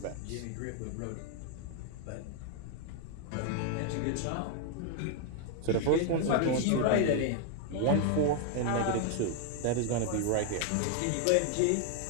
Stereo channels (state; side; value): different; both; correlation 0.00